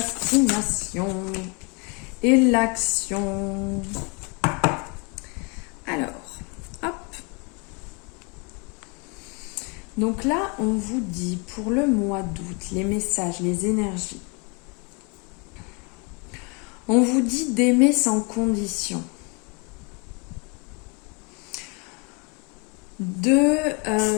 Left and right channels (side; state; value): right; quieter; 32.2 dB